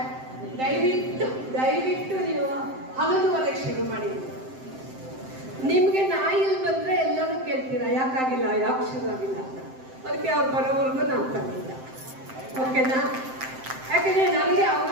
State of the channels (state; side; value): late; left; 7.7 ms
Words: ದಯವಿಟ್ಟು ನೀವು 11:30 ಶುರು ಮಾಡಿ. ನಿಮಗೆ ನಾಯಿಲ್ ಬಂದರೆ ಎಲ್ಲರೂ ಕೇಳ್ತೀರಾ ಯಾಕಾಗಿಲ್ಲ, ಯಾಕೆ ಶುರು ಆಗಿಲ್ಲ ಅಂತ. ಅದಕ್ಕೆ ಅವ್ರು ಬರೋವರೆಗೂ ನಾನು ತಂದಿಲ್ಲ. ಓಕೆನಾ? ಯಾಕೆಂದರೆ ನನಗೆ